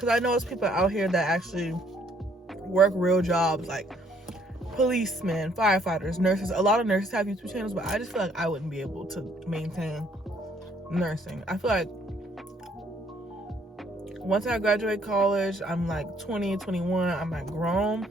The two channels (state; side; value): normal; both; correlation 0.65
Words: I know there's people out here that actually work real jobs, like policemen, firefighters, nurses. A lot of nurses have YouTube channels, but I just feel like I wouldn't be able to maintain nursing. I feel like once I graduate college, I'm like 20, 21, I'm like grown.